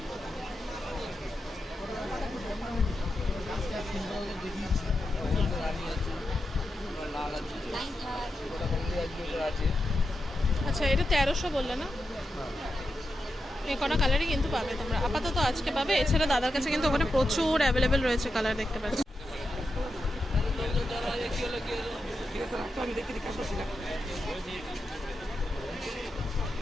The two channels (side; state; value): both; normal; correlation 0.88